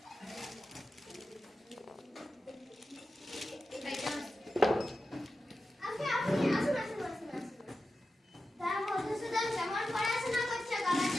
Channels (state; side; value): normal; both; correlation 0.92